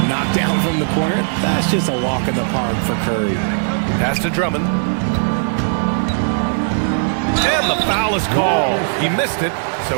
Knocked down from the corner. That's just a walk in the park for Curry. Pass to Drummond. And the foul is called. He missed it,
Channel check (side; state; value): left; silent; digital silence